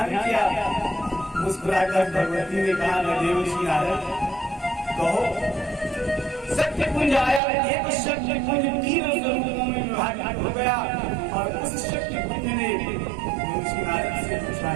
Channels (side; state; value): left; drops out; at 7.4 s